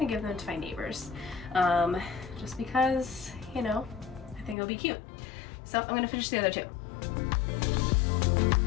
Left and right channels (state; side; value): drops out; right; at 4.5 s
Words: give them to my neighbors, just because, you know, I think it'll be cute. So I'm gonna finish the other two.